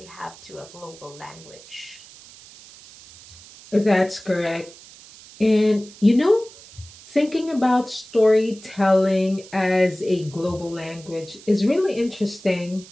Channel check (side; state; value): right; noise; hiss, 20 dB below the sound